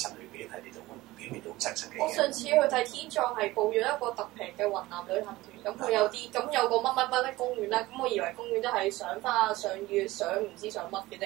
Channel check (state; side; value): quieter; left; 18.7 dB